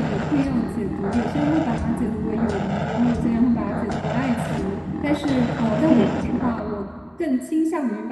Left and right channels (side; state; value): both; identical; correlation 1.00